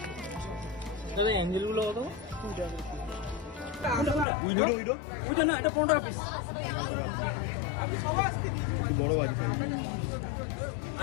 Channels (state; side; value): drops out; right; at 4.2 s